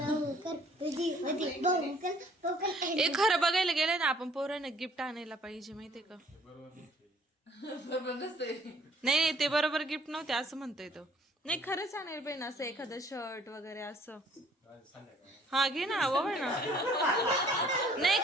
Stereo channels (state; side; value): normal; both; correlation 0.59